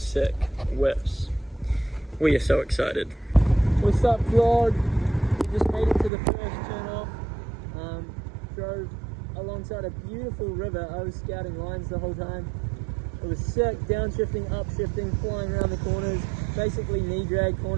whips. We are so excited. What's up, vlog? We just made it to the first turn off. Drove alongside a beautiful river. I was scouting lines the whole time. It was sick, downshifting, upshifting, flying around the corners, basically knee drag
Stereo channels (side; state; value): left; drops out; at 6.1 s